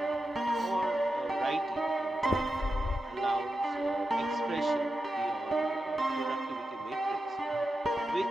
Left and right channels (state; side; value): normal; both; correlation 0.90